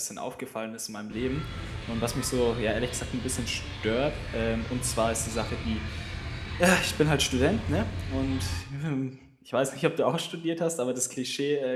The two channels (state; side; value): identical; both; correlation 1.00